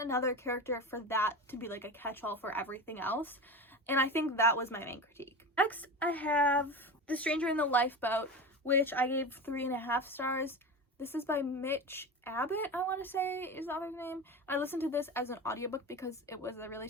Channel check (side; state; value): both; normal; correlation 0.26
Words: another character for that to be like a catch-all for everything else, and I think that was my main critique. Next, I have The Stranger in the Lifeboat, which I gave 3.5 stars. This is by Mitch Abbott, I want to say is the author's name. I listened to this as an audiobook because it was a really